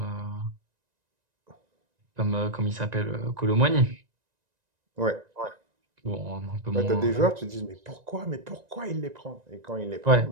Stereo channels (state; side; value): late; left; 1.9 ms